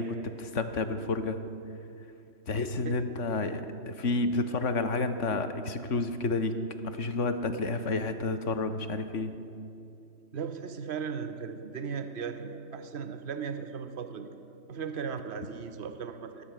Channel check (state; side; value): late; right; 3.5 ms